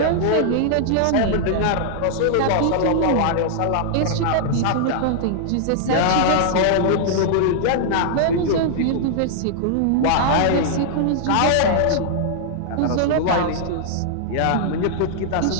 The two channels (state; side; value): different; both; correlation -0.01